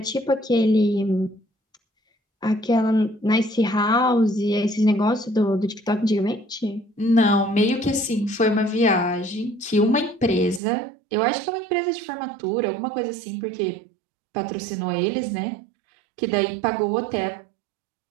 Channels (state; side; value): drops out; left; at 10.6 s